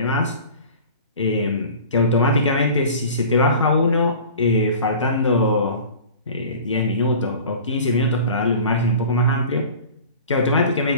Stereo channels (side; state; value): both; inverted; correlation -0.41